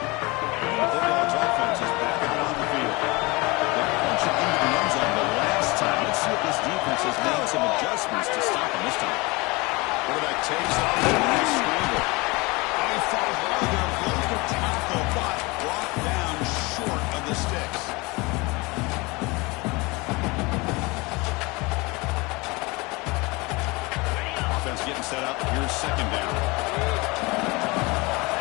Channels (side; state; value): right; quieter; 25.1 dB